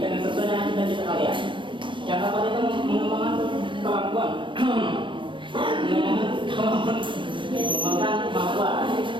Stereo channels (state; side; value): late; left; 0.24 ms